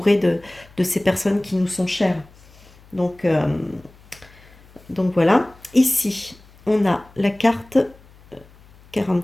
de ces personnes qui nous sont chères. Donc, euh, donc voilà. Ici, on a la carte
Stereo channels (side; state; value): left; noise; hum, 26 dB below the sound